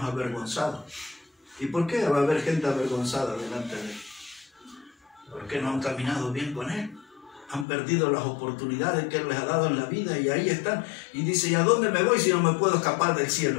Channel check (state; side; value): drops out; right; at 7.7 s